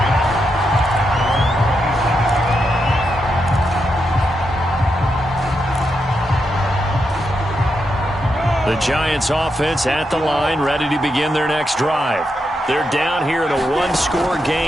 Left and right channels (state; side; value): normal; both; correlation 0.84